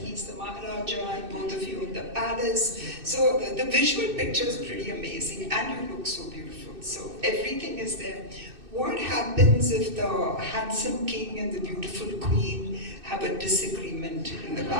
he's the Maharaja, and both of you in the palace. So the visual picture is pretty amazing, and you look so beautiful. So everything is there. What happens if the handsome king and the beautiful queen have a disagreement in the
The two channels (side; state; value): left; late; 2.6 ms